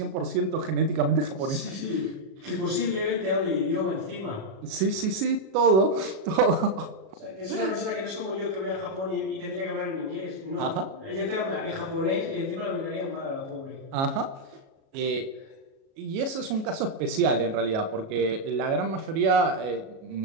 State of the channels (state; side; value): late; left; 37 ms